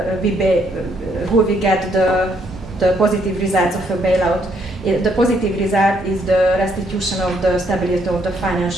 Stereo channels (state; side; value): normal; both; correlation 0.71